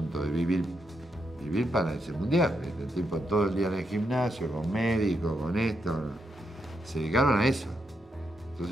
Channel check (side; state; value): both; normal; correlation 0.81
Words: de vivir para ese mundial, ¿viste? El tipo todo el día en el gimnasio, con médicos, con esto. Se dedicaron a eso.